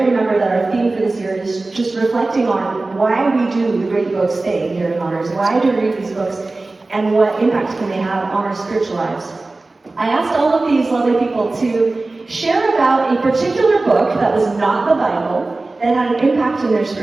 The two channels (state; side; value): quieter; left; 3.3 dB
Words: remember that our theme for this year is just reflecting on why we do the great books thing here in Honors, why do we read these books, and what impact can they have on our spiritual lives. I asked all of these lovely people to share about a particular book that was not the Bible that had an impact in their